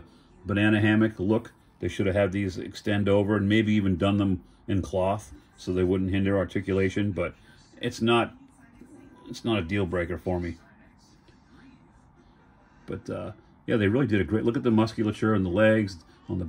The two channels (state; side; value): identical; both; correlation 1.00